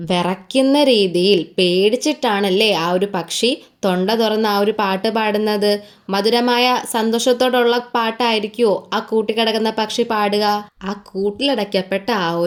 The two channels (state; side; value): identical; both; correlation 1.00